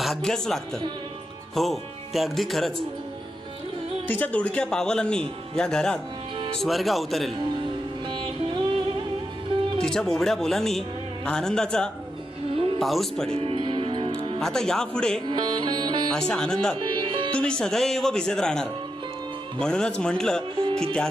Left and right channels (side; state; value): both; normal; correlation 0.86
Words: लागतं. हो, ते अगदी खरंच. तिच्या दुडक्या पावलांनी या घरात स्वर्ग अवतरेल. तिच्या बोबड्या बोलांनी आनंदाचा पाऊस पडेल. आता यापुढे अशा आनंदात तुम्ही सदैव भिजत राहणार. म्हणूनच म्हटलं की